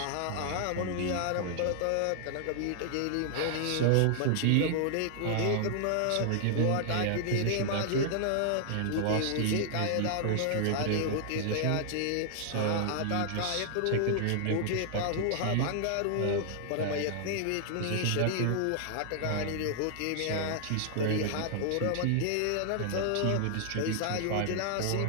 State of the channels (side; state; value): both; different; correlation 0.00